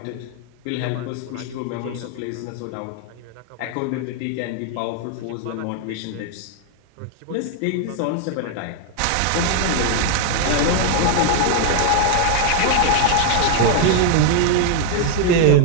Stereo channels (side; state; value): both; different; correlation 0.00